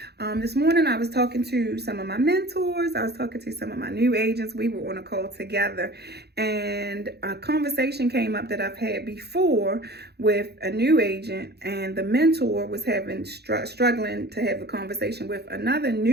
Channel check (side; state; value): left; late; 0.48 ms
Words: This morning I was talking to some of my mentors. I was talking to some of my new agents. We were on a call together and a conversation came up that I've had before with a new agent, and the mentor was struggling to have a conversation with another